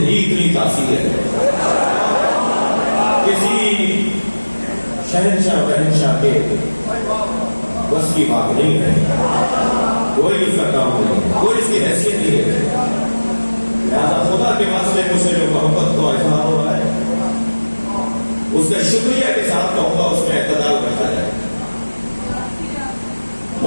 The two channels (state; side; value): inverted; both; correlation -1.00